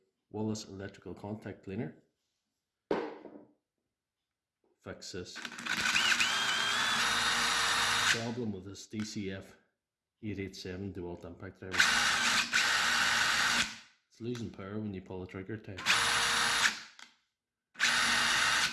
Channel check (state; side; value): identical; both; correlation 1.00